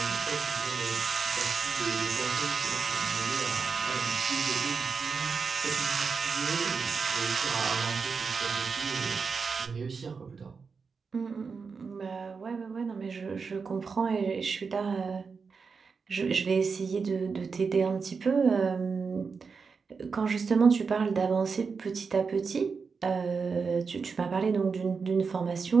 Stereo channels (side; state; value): left; quieter; 5.2 dB